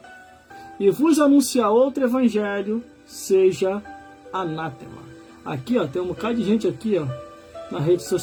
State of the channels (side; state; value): both; identical; correlation 1.00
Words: e vos anunciar outro evangelho, seja anátema. Aqui, ó, tem um bocado de gente aqui, ó, na rede